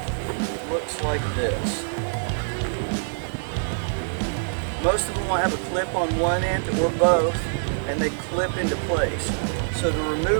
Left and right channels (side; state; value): left; silent; digital silence